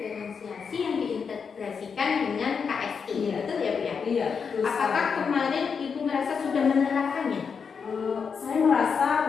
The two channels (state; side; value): quieter; right; 6.0 dB